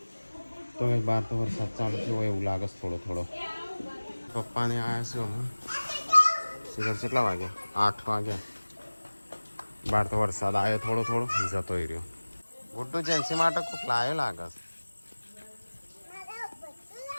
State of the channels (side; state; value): both; inverted; correlation -1.00